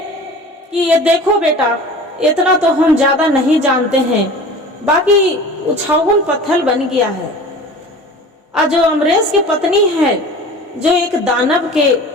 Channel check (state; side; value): normal; both; correlation 0.39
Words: कि ये देखो बेटा, इतना तो हम ज्यादा नहीं जानते हैं, बाकी उछावन पत्थर बन गया है। और जो अमरेश की पत्नी है, जो एक दानव के